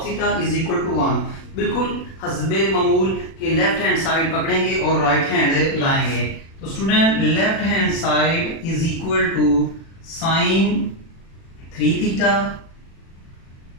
theta is equal to 1। बिल्कुल हस्बे मामूल के लेफ्ट हैंड साइड पकड़ेंगे और राइट हैंड लाएंगे। तो student left hand side is equal to sin 3 theta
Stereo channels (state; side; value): late; right; 36 ms